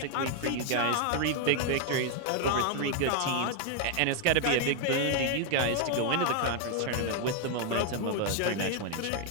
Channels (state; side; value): different; both; correlation 0.00